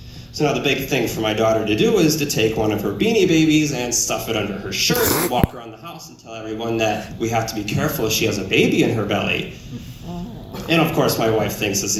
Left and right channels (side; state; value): both; identical; correlation 1.00